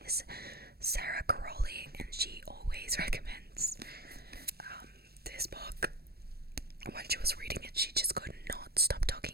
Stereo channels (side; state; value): left; late; 0.46 ms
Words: is Sarah Caroli, and she always recommends this book. When she was reading it, she just could not stop